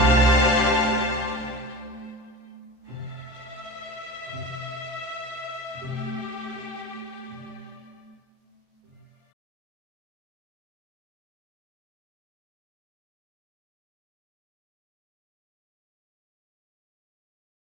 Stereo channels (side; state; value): left; late; 14 ms